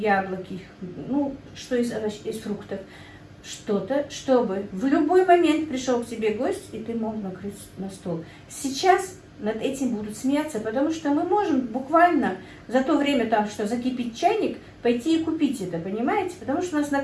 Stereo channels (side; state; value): both; identical; correlation 1.00